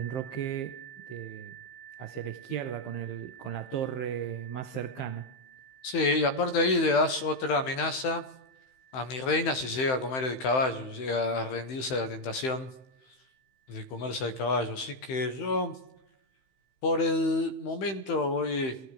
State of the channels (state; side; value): late; right; 15 ms